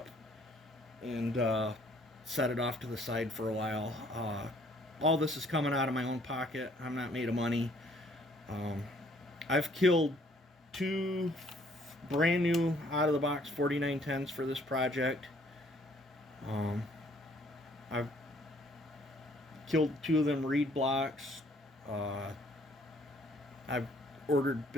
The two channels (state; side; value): normal; both; correlation 0.62